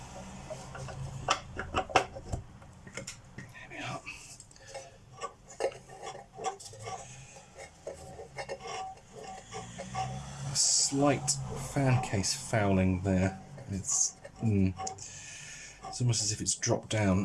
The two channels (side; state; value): both; identical; correlation 1.00